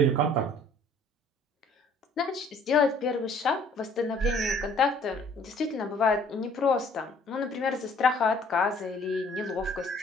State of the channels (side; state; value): both; normal; correlation 0.57